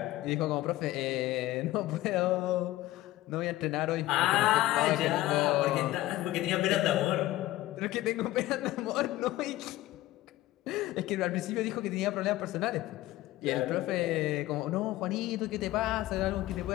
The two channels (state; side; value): quieter; right; 16.5 dB